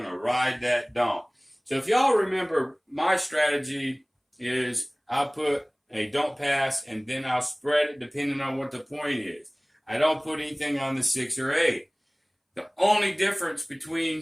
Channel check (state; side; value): identical; both; correlation 1.00